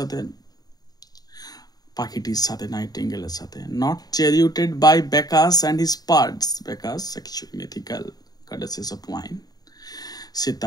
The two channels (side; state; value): right; late; 0.19 ms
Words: পাখিটির সাথে, নাইটিঙ্গেলের সাথে। Not charioted by Bacchus and his birds. Bacchus, sexual mythical goddesses of wine. সে